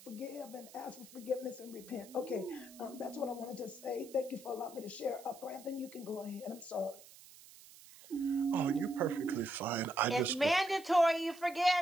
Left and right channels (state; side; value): noise; right; hiss, 20 dB below the sound